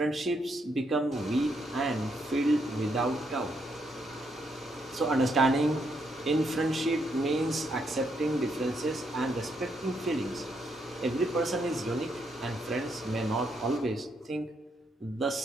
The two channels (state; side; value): normal; both; correlation 0.77